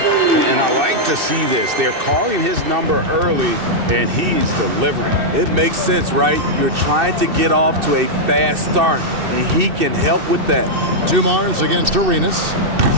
I like to see this. They're calling his number early, and he's delivering. It makes sense, right? You're trying to get off to a fast start, and he can help with that. Dumars against Arenas.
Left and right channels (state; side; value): late; left; 2.6 ms